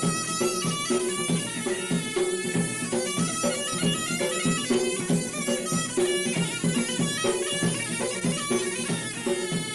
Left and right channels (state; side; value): identical; both; correlation 1.00